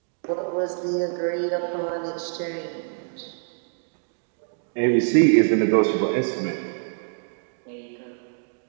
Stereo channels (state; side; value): silent; left; 61 dB below the other